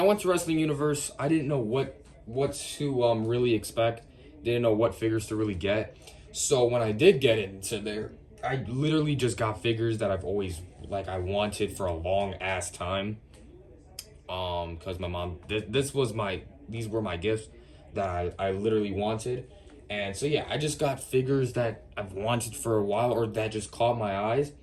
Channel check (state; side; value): identical; both; correlation 1.00